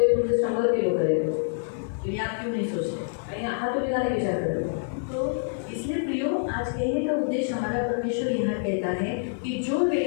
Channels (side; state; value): right; silent; digital silence